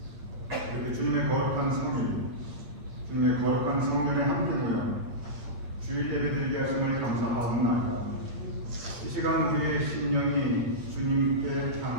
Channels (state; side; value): late; left; 8.7 ms